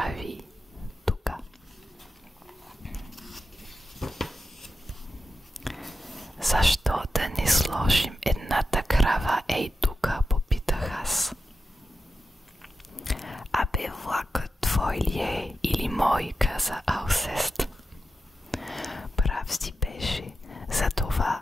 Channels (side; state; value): both; normal; correlation 0.90